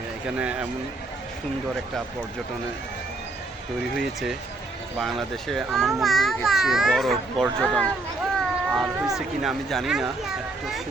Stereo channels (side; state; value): left; quieter; 3.2 dB